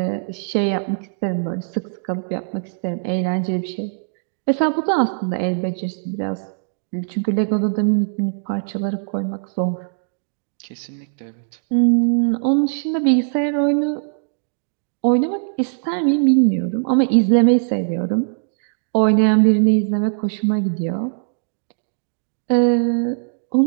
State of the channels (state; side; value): silent; left; digital silence